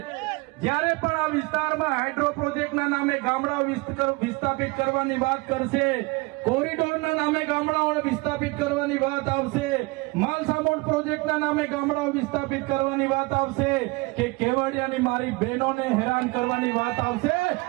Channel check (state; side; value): quieter; left; 24.8 dB